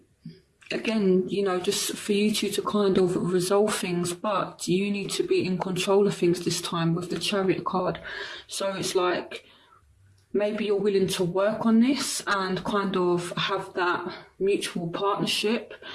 again, you know, just for you two to kind of resolve things, but you need to be in control of things this time with the Chariot card. So it's like, maybe you're willing to work on this and kind of have that mutual partnership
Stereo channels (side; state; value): both; identical; correlation 1.00